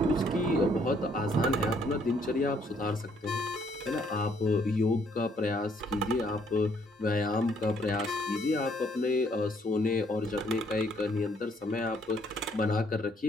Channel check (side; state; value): both; normal; correlation 0.67